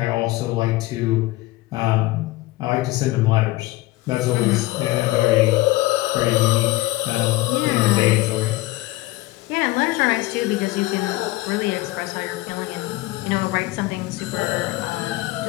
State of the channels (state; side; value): quieter; right; 18.9 dB